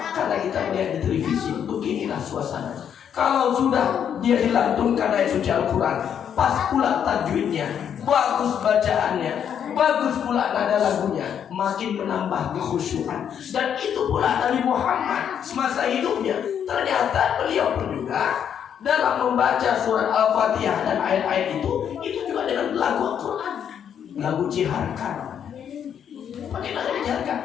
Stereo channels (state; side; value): quieter; right; 8.6 dB